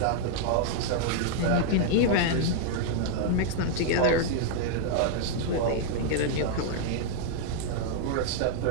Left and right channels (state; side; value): different; both; correlation -0.01